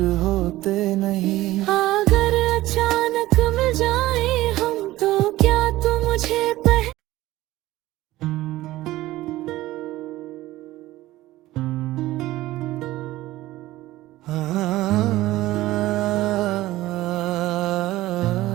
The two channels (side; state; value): left; quieter; 16.7 dB